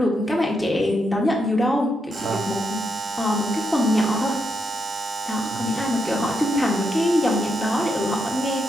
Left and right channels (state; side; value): normal; both; correlation 0.81